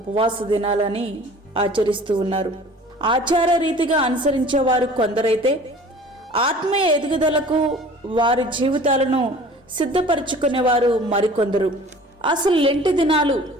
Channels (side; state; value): both; normal; correlation 0.46